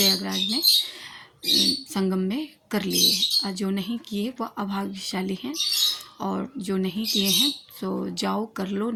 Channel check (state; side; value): identical; both; correlation 1.00